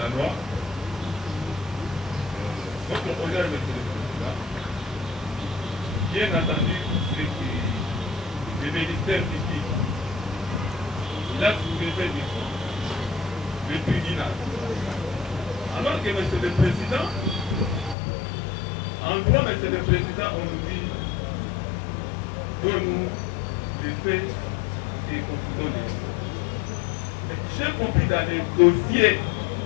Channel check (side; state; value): right; drops out; at 17.9 s